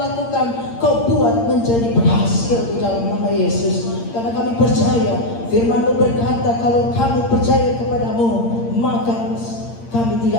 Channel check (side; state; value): right; late; 8.7 ms